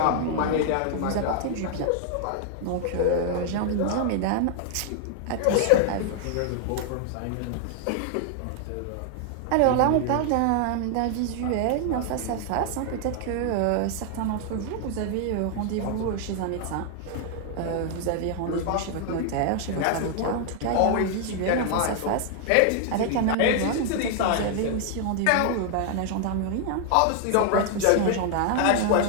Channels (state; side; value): different; both; correlation 0.00